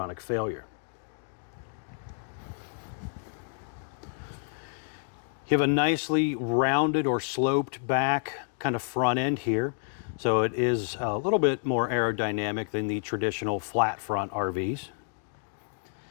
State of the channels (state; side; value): silent; right; digital silence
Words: failure. You have a nicely rounded or sloped back kind of front end here. So it is a little bit more aerodynamic than the traditional flat front RVs.